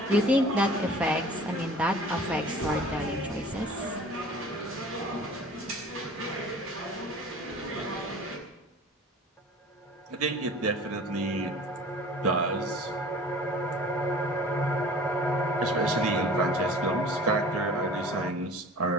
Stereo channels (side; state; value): both; normal; correlation 0.45